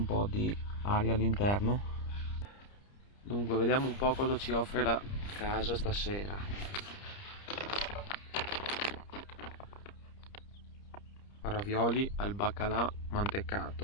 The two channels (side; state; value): right; late; 30 ms